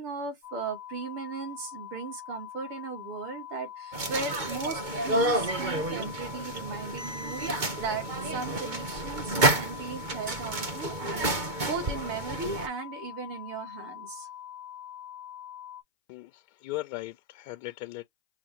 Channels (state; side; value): late; left; 2.2 ms